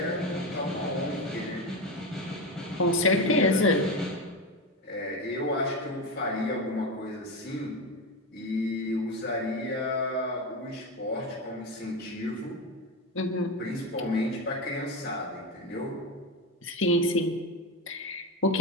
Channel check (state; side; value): normal; both; correlation 0.17